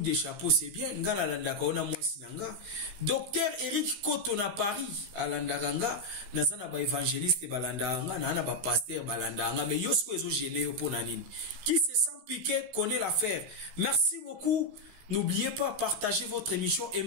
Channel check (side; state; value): left; late; 16 ms